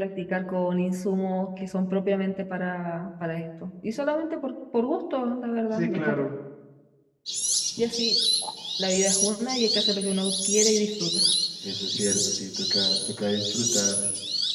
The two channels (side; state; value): both; identical; correlation 1.00